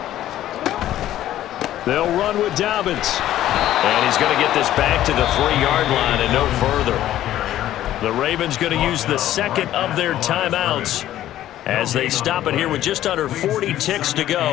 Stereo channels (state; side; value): quieter; right; 13.0 dB